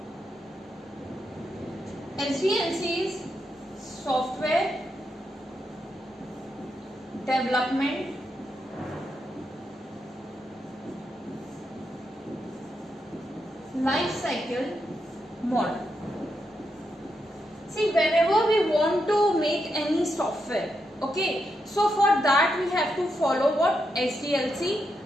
SDLC is software development life cycle model. See, whenever we want to make any software, okay, so for that we have to follow what SDLC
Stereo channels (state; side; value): normal; both; correlation 0.83